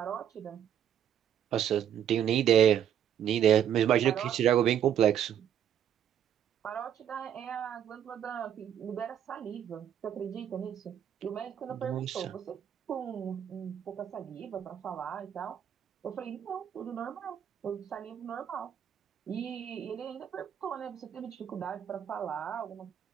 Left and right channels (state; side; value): quieter; left; 9.5 dB